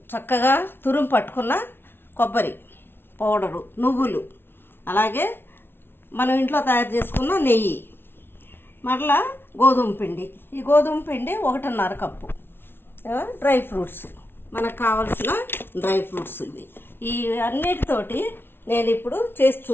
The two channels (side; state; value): right; late; 0.11 ms